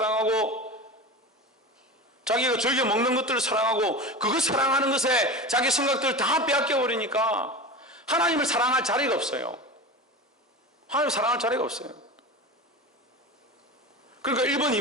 자기가 즐겨 먹는 것들을 사랑하고 그거 사랑하는 것에 자기 생각들을 다 빼앗겨 버리니까 하나님을 사랑할 자리가 없어요. 하나님을 사랑할 자리가 없어요. 그러니까 1번,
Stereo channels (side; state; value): both; normal; correlation 0.29